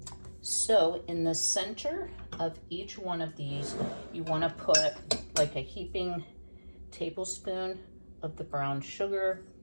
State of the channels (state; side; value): inverted; both; correlation -1.00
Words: So in the center of each one of these, you want to put like a heaping tablespoon of the brown sugar.